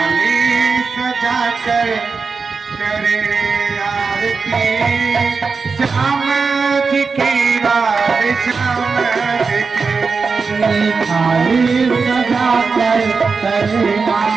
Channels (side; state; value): left; quieter; 4.8 dB